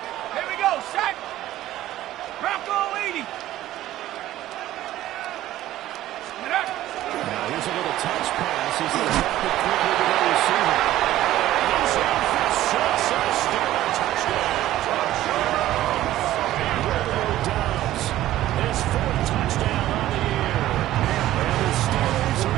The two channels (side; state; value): left; quieter; 14.4 dB